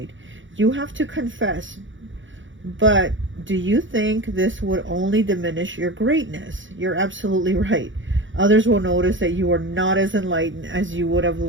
You have to confess, but do you think this would only diminish your greatness? You're absolutely right. Others will notice that you are not as enlightened as you would have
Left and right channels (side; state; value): left; late; 0.56 ms